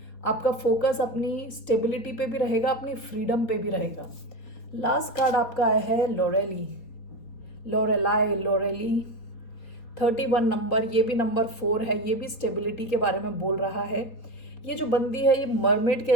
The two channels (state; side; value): late; right; 4.2 ms